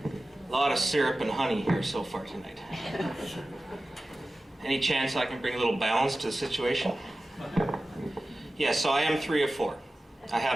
A lot of syrup and honey here so far tonight. Any chance I can bring a little balance to the situation? Yes, so I am 3 of 4. I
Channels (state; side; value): normal; both; correlation 0.95